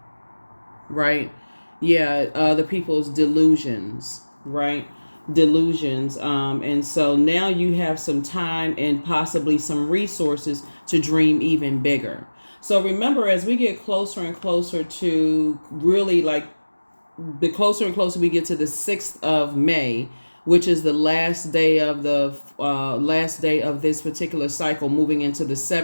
right? Yeah, other people's delusions, right? Delusions. And so now you have some time and possibly some resources to dream even bigger. So remember, as we get closer and closer to really, like, the closer and closer we get to the 6th of May, which is the last day of this particular cycle, moving into the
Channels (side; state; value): both; inverted; correlation -1.00